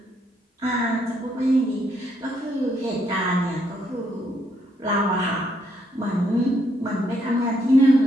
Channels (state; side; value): normal; both; correlation 0.73